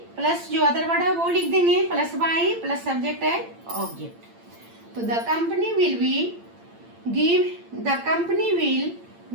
plus जो अदर वर्ड है वो लिख देंगे, प्लस बाई प्लस सब्जेक्ट है ऑब्जेक्ट। तो the company will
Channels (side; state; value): left; late; 8.8 ms